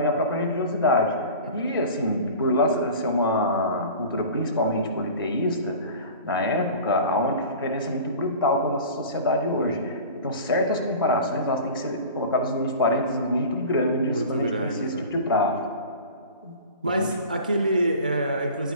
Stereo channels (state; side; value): inverted; both; correlation -0.38